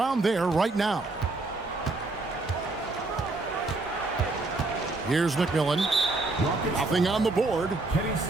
there right now. Here's McMillan. Nothing on the board. Kenny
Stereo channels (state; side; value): quieter; left; 3.2 dB